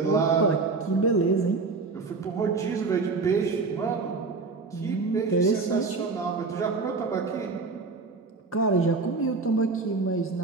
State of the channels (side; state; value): left; quieter; 4.1 dB